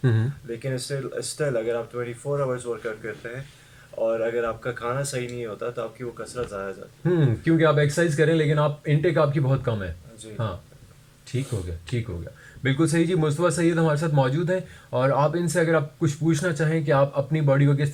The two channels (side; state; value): both; identical; correlation 1.00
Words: लेकिन still अगर आप 24 hours वर्कआउट करते हैं और अगर आपका खाना सही नहीं होता तो आपकी वो कसरत ज़ाया जाती है. क्योंकि आप एक्सरसाइज करें लेकिन आप इनटेक आपकी बहुत कम है. जी. हाँ, ठीक हो गया, ठीक हो गया. बिल्कुल सही जी. मुस्तफ़ा सैयद हमारे साथ मौजूद हैं और आप इनसे अगर आप कुछ पूछना चाहें कि आप अपनी बॉडी को किस